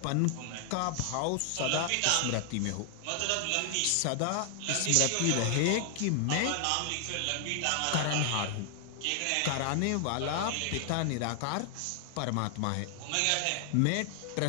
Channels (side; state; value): both; different; correlation 0.00